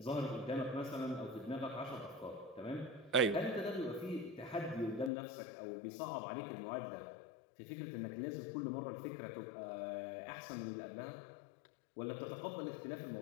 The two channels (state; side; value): drops out; right; at 5.1 s